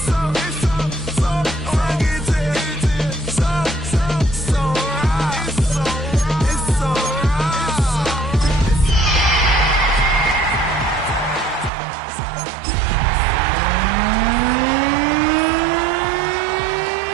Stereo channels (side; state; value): left; drops out; at 11.7 s